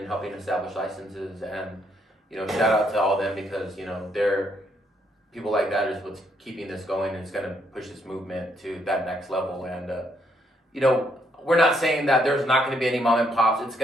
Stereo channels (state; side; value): normal; both; correlation 0.72